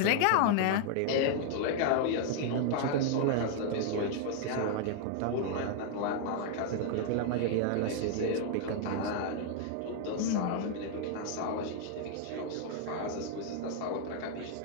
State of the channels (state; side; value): different; both; correlation 0.00